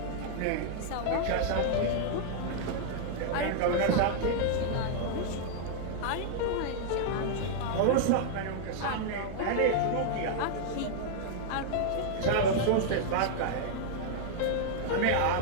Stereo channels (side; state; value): both; different; correlation -0.01